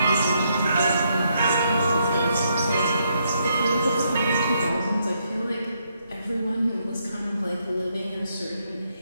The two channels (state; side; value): inverted; both; correlation -0.76